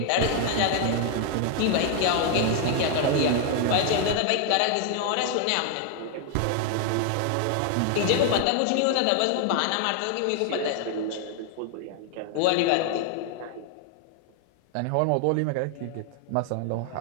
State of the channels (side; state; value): both; different; correlation 0.00